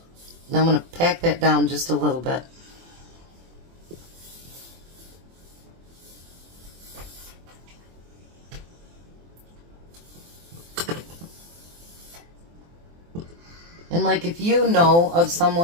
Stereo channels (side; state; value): left; late; 24 ms